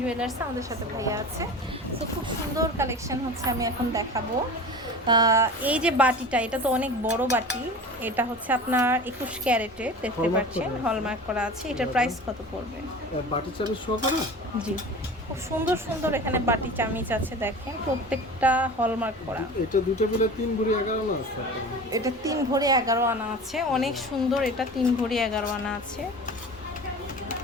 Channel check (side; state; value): both; normal; correlation 0.36